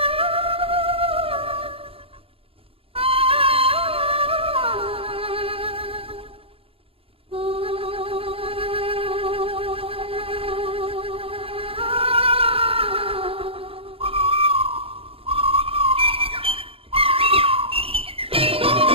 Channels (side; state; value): left; late; 0.27 ms